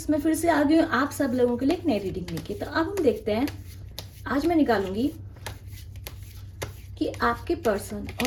मैं फिर से आ गई हूँ आप सब लोगों के लिए एक नई रीडिंग लेके। तो अब हम देखते हैं, आज मैं निकालूंगी कि आपके पर्सन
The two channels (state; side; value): identical; both; correlation 1.00